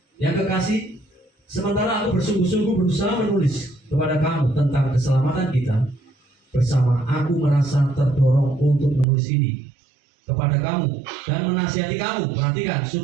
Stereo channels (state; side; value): drops out; left; at 9.1 s